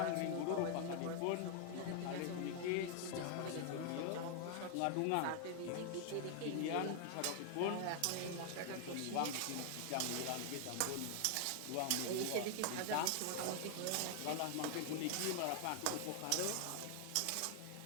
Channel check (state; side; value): different; both; correlation 0.00